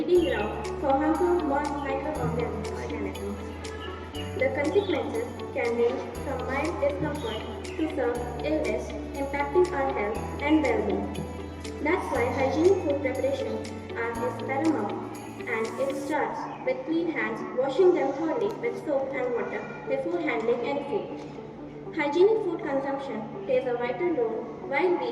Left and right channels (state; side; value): identical; both; correlation 1.00